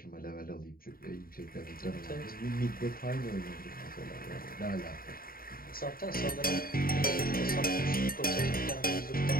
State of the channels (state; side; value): late; right; 0.43 ms